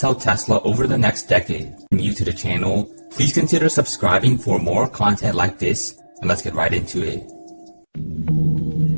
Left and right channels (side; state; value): both; inverted; correlation -1.00